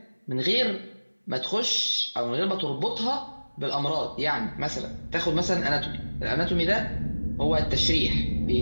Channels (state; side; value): inverted; both; correlation -1.00